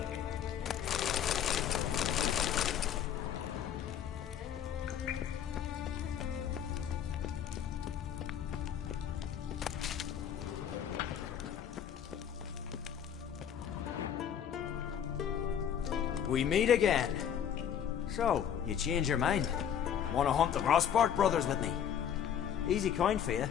We meet again. So, you change your mind? Want to hunt the Crossport brothers with me? Easy coin for you.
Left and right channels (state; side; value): quieter; right; 9.0 dB